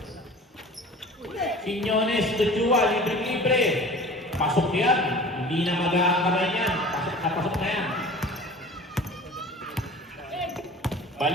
Quiñones to Chua. Libre-libre. Pasok yan. Hindi na mag-aakabay yan. Pasok na yan.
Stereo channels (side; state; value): both; normal; correlation 0.42